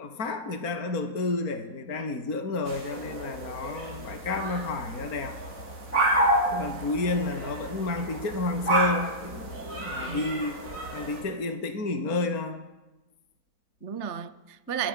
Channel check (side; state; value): right; late; 4.3 ms